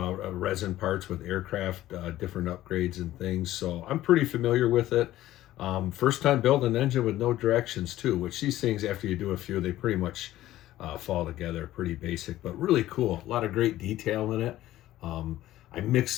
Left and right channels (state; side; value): quieter; right; 14.7 dB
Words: resin parts with aircraft, different upgrades and things, so I'm pretty familiar with it. First time building an engine with no directions too, which these things, after you do a few, they pretty much fall together pretty basic, but really cool. A lot of great detail in it. I